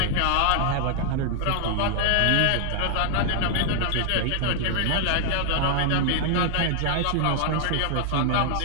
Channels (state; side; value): different; both; correlation 0.00